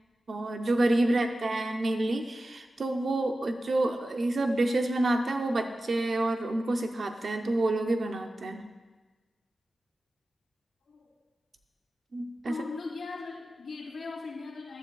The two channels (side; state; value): both; normal; correlation 0.94